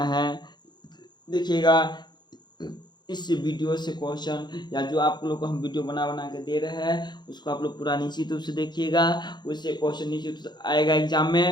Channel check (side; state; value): right; late; 0.21 ms